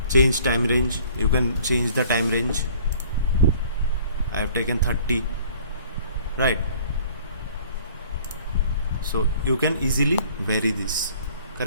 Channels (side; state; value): both; inverted; correlation -0.53